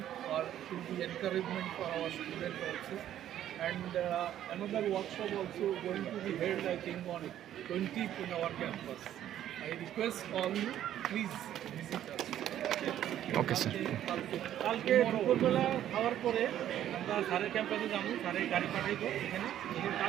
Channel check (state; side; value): quieter; left; 11.5 dB